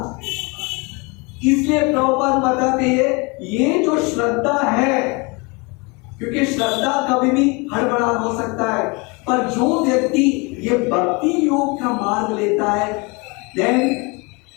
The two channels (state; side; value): quieter; right; 28.6 dB